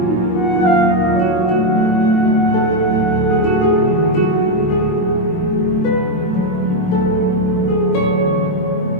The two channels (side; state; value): right; late; 23 ms